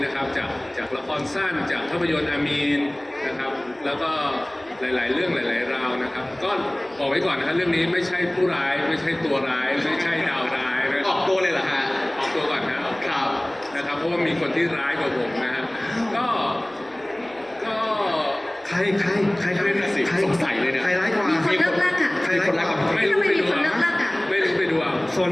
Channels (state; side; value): noise; left; hum, 29 dB below the sound